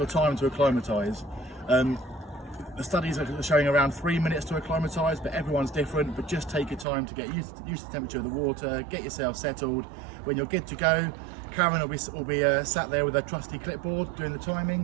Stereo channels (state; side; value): drops out; left; at 6.9 s